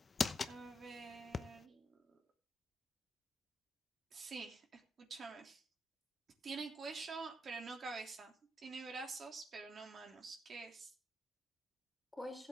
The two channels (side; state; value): both; normal; correlation 0.82